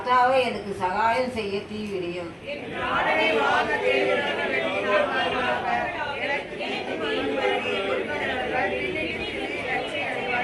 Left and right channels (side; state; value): both; identical; correlation 1.00